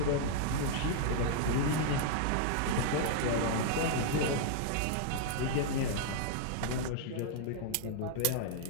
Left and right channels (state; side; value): different; both; correlation -0.01